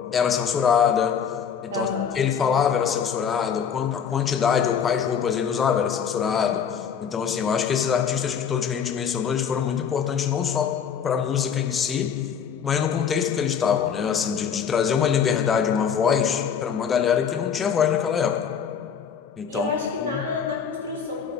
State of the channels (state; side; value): quieter; right; 7.4 dB